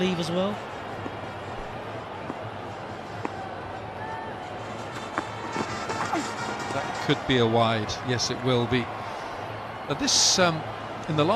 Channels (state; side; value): identical; both; correlation 1.00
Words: as well. Could be a wide. Yes, it will be. This in the